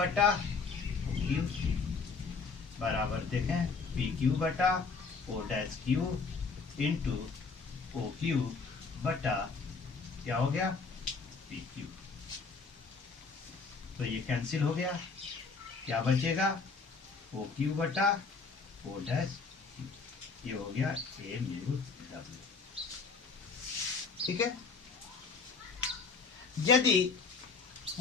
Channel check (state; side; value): quieter; right; 4.7 dB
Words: क्यू बराबर देखें पी क्यू बटा O dash Q into O Q बटा क्या हो गया, पी क्यू। तो ये कैंसिल हो गया, क्या बचेगा, ओ क्यू बटा ओ डैश क्यू, ये हो गया ए म्यू डब्ल्यू, ठीक है। यदि